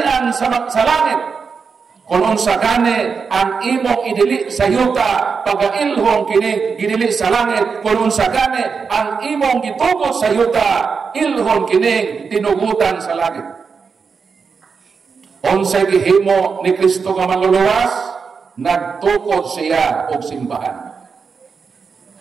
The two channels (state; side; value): quieter; left; 5.5 dB